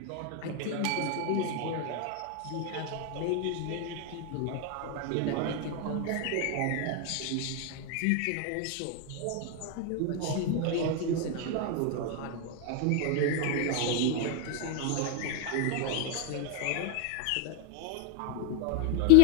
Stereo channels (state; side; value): different; both; correlation 0.01